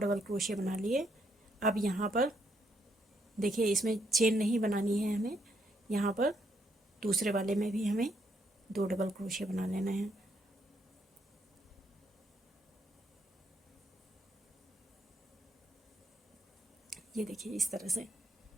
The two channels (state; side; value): normal; both; correlation 0.75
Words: क्रोशिया बना लिए। अब यहाँ पर देखिए इसमें चेन नहीं बनानी है हमें, यहाँ पर दूसरे वाले में भी हमें 2 डबल क्रोशिया बना लेना है। ये देखिए इस तरह से